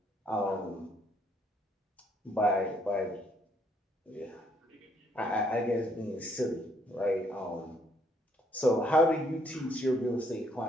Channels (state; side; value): normal; both; correlation 0.68